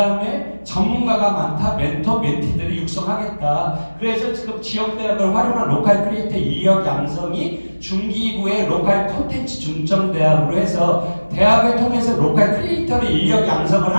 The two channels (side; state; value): both; inverted; correlation -1.00